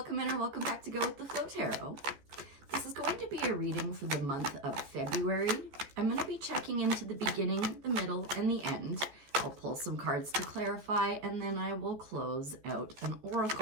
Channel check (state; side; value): late; left; 14 ms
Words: in or welcome back to Go With The Flow Tarot. This is going to be a reading for the month of February. I'm going to be checking into the beginning, the middle, and the end. I'll pull some cards to clarify, and then I will close out an